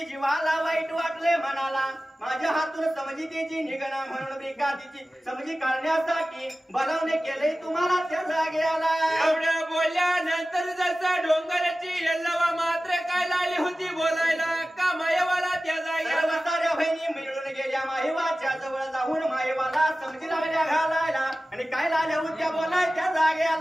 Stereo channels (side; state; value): both; normal; correlation 0.96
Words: जीवाला वाईट वाटले म्हणाला माझ्या हातून समजितीची निगणा म्हणून ब्रिकातीची समजी काढण्यासाठी बनवणे केले तुम्हाला त्या जागेला एवढ्या बोलल्यानंतर जसा डोंगराची यल्लवा मात्र काय लागली होती बोलायला का मायवाला त्या जागेला साऱ्या बहिणी मिळून गेल्या माहेवाच्या जवळ जाऊन माहेवाला समजी लागल्या घालायला आणि काय लागल्या होत्या बोलाय त्या